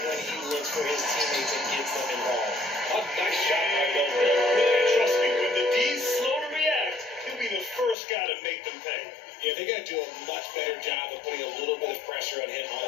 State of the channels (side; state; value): right; drops out; at 8.0 s